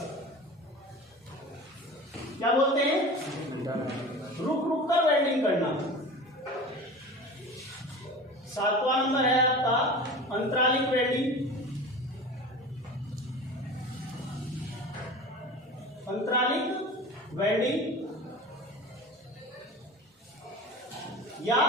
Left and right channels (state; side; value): normal; both; correlation 0.34